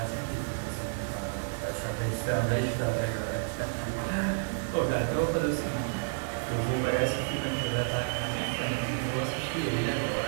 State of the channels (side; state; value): left; silent; digital silence